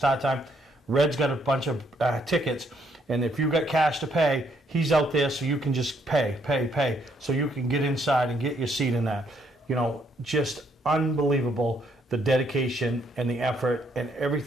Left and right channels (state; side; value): normal; both; correlation 0.71